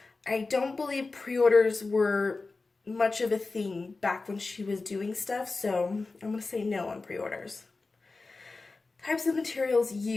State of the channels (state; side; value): quieter; right; 3.7 dB